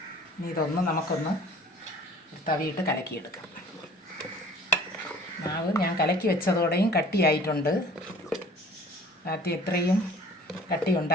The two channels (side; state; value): both; normal; correlation 0.49